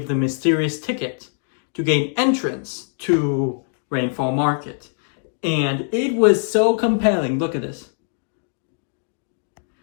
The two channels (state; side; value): silent; right; 62 dB below the other